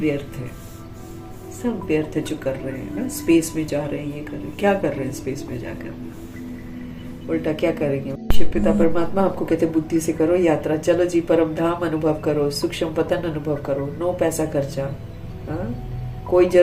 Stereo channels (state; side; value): identical; both; correlation 1.00